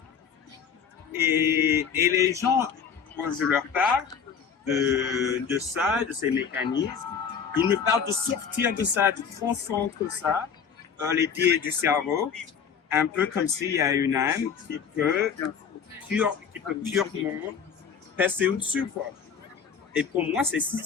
Et les gens, quand je leur parle de ça, de ces mécanismes, ils me parlent de sortir de ça, de transcendre ça, les biais du cerveau, un peu comme s'il y a une âme qui peut purement passer au-dessus, quoi. Et pour moi,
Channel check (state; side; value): quieter; right; 6.9 dB